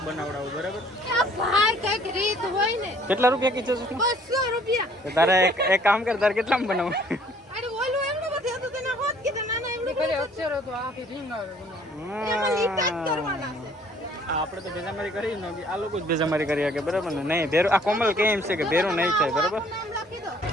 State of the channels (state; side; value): normal; both; correlation 0.58